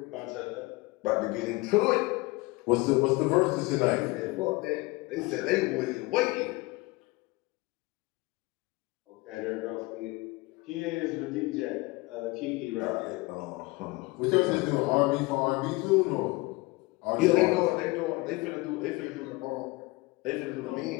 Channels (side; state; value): right; quieter; 23.1 dB